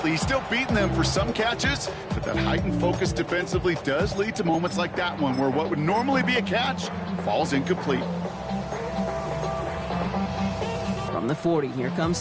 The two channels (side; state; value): both; identical; correlation 1.00